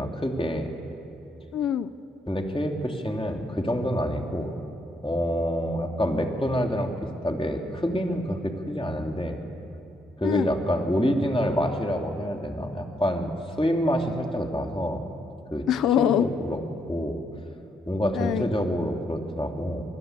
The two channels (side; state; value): both; normal; correlation 0.75